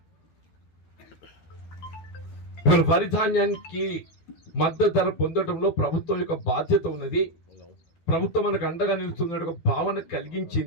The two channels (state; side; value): late; right; 12 ms